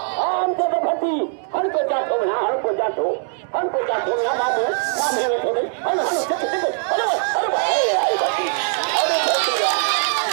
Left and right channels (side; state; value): left; silent; 57 dB below the other